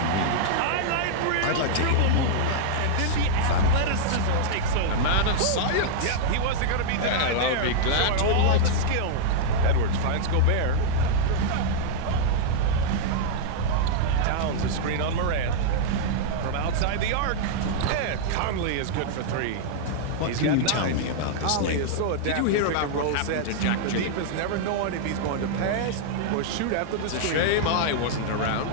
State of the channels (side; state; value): both; different; correlation -0.02